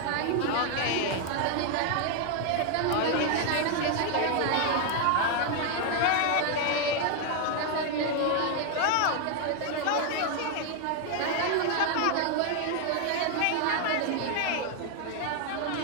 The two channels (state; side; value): different; both; correlation 0.00